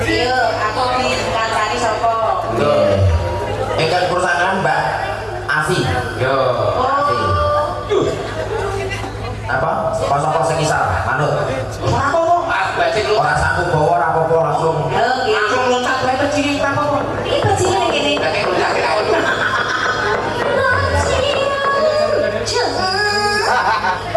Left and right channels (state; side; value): identical; both; correlation 1.00